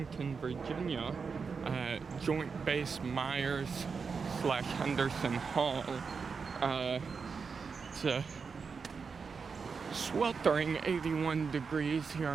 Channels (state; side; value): quieter; left; 5.4 dB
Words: Virginia at Joint Base Myer-Henderson Hall. It's a sweltering 81 degrees here